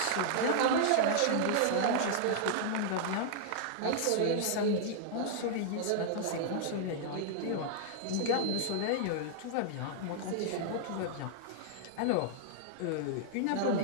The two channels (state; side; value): different; both; correlation -0.01